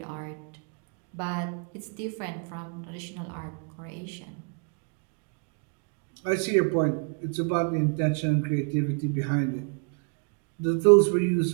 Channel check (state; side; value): quieter; left; 38.1 dB